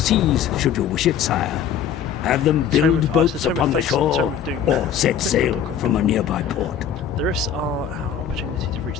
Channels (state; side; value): quieter; right; 8.4 dB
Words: should you wish it, sire. Have them build boats upon the shore, or set sail from a nearby port. The rifts are our opportunity to reach